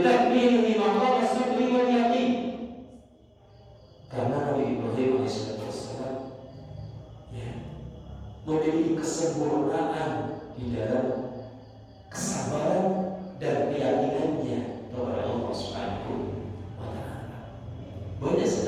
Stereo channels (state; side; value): identical; both; correlation 1.00